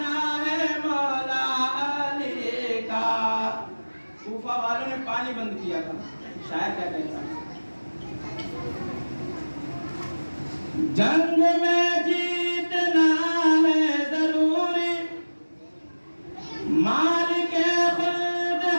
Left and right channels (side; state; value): both; inverted; correlation -1.00